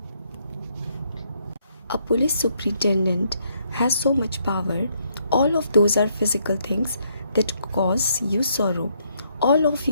A police superintendent has so much power. All of those are physical things that cause you sorrow. All of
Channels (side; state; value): both; inverted; correlation -0.73